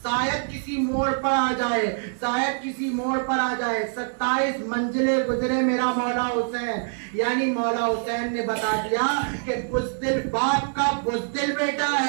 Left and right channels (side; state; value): left; silent; 62 dB below the other